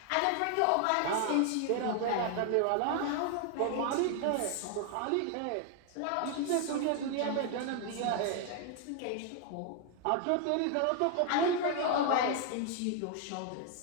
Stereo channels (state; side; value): different; both; correlation 0.00